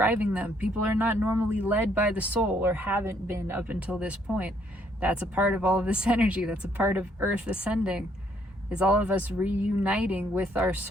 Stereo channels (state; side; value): normal; both; correlation 0.68